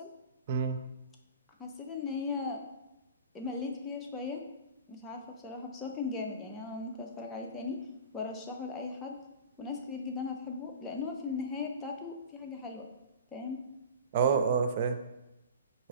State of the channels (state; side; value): inverted; both; correlation -0.35